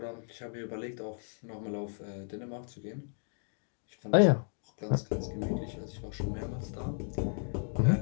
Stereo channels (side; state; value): right; silent; 55 dB below the other